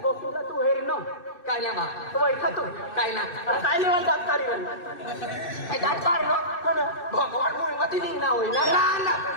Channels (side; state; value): right; late; 2.6 ms